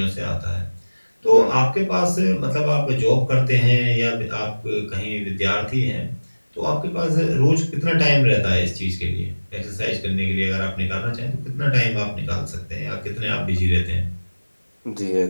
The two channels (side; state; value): both; inverted; correlation -1.00